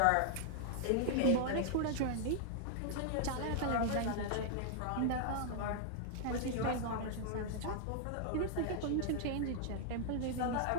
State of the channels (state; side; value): different; both; correlation 0.00